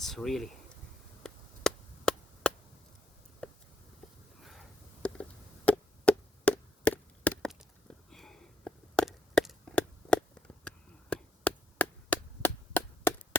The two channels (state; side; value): normal; both; correlation 0.75